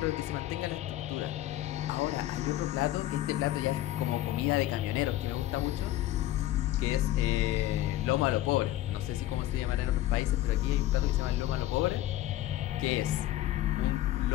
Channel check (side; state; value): right; quieter; 14.6 dB